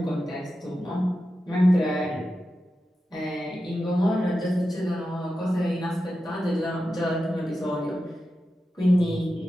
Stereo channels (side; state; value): both; normal; correlation 0.91